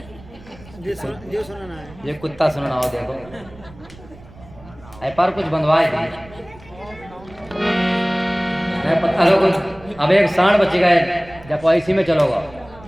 ये कुत्ता सुनना हो देखो पर कुछ बंधवाए थे मैं पता लोगों। अब एक सांड बच गए जब इसी में चलोगा।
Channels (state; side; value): noise; right; rumble, 21 dB below the sound